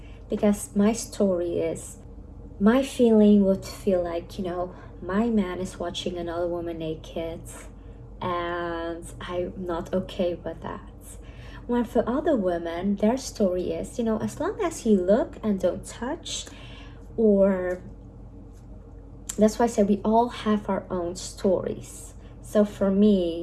because my story is, my feeling would feel like, my man is watching another woman naked, and I'm not okay with that. When for other women, their story is, as long as you look and don't touch, Or that's why I said we all have our own stories. So for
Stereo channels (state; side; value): identical; both; correlation 1.00